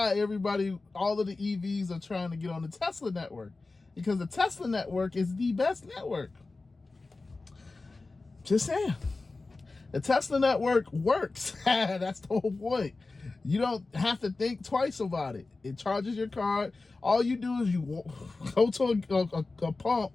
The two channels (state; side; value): quieter; right; 3.5 dB